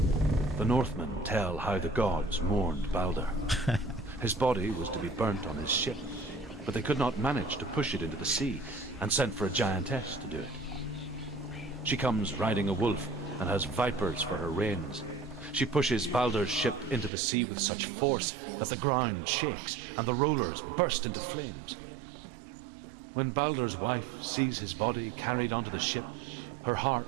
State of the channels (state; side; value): drops out; left; at 17.1 s